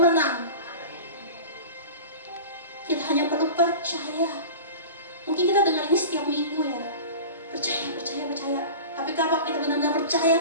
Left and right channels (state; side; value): inverted; both; correlation -0.34